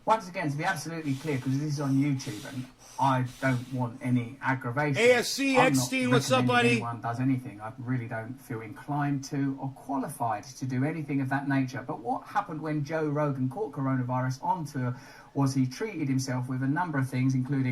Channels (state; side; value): identical; both; correlation 1.00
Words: Once again, to be absolutely clear, because this is on YouTube and I don't want any aggravation. ASC, I'm Eckstein, not what's up, recommending buddy? anyone does anything. I really don't feel inclined to or qualified to do anything of that nature. But what happened when Joe Rogan caught coronavirus on tour was he treated himself with a number of things,